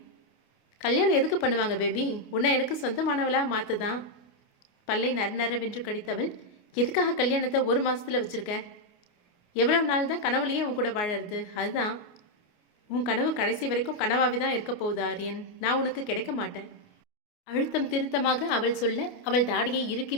கல்யாணம் எதுக்கு பண்ணுவாங்க பேபி? உன்னை எனக்கு சொந்தமானவளா மாத்துதான். பல்லை நரநரவென்று கடித்தவள், எதுக்காக கல்யாணத்தை 1 மாசத்துல வச்சிருக்க? எவ்வளவு நாள் தான் கனவுலையே உன் கூட வாழறது? அதுதான் உன் கனவு கடைசி வரைக்கும் கனவாவே தான் இருக்க போகுது ஆரியன். நான் உனக்கு கிடைக்க மாட்டேன். அழுத்தம் திருத்தமாக அவள் சொல்ல அவள் தாடியை இறுக்கி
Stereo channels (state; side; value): late; right; 29 ms